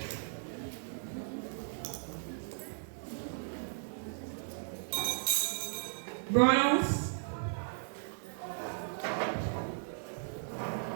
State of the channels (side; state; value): left; silent; 54 dB below the other